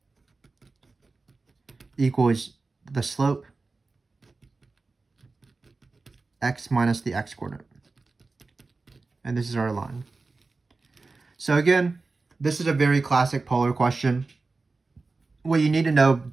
equals the slope x minus the x coordinate. And this is our line. So again, this is a very classic polar question. What you need to know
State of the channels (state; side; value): quieter; left; 3.8 dB